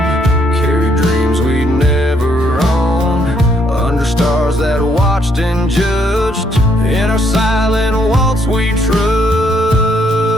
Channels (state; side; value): normal; both; correlation 0.71